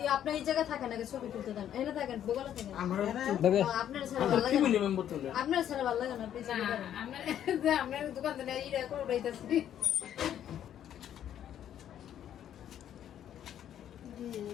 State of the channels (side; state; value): right; quieter; 10.4 dB